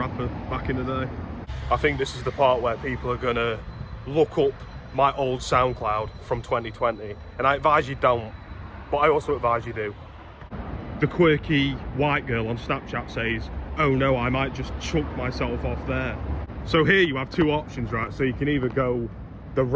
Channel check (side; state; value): both; identical; correlation 1.00